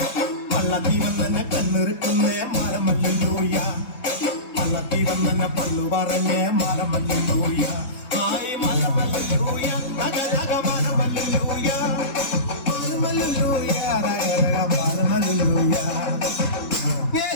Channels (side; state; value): right; late; 3.8 ms